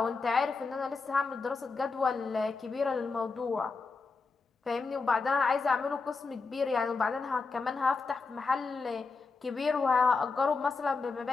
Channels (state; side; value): quieter; right; 4.3 dB